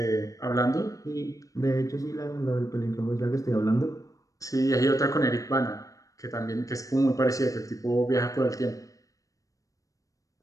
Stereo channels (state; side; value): late; right; 0.16 ms